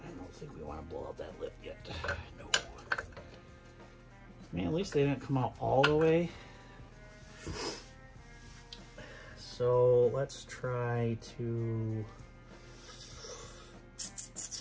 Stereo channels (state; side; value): identical; both; correlation 1.00